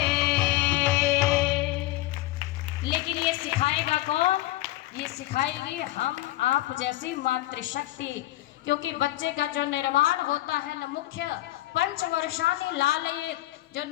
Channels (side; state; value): right; quieter; 16.8 dB